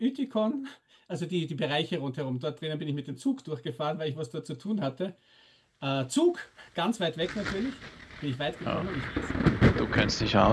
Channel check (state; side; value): identical; both; correlation 1.00